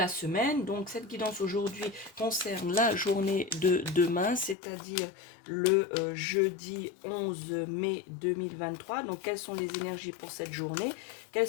semaine. Donc cette guidance aujourd'hui concerne la journée de demain, c'est-à-dire le jeudi 11 mai 2023. Donc quelles sont les énergies pour cette journée?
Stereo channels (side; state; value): right; drops out; at 4.5 s